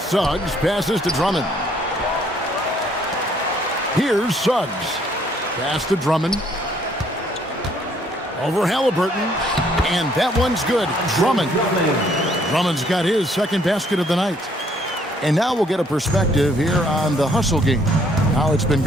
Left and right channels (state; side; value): normal; both; correlation 0.65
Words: Suggs passes to Drummond. Here's Suggs. Pass to Drummond. Over Halliburton. And that one's good. Drummond. Drummond's got his second basket of the night. And now we'll get a perspective here on the hustle game. How it's been